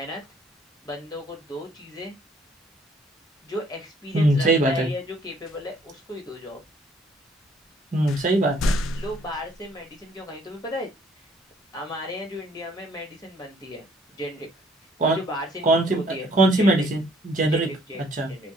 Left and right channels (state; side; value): normal; both; correlation 0.61